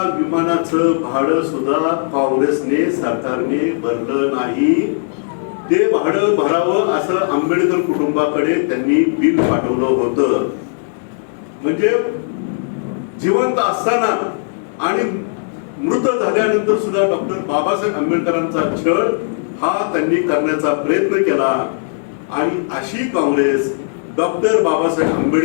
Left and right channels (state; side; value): silent; right; digital silence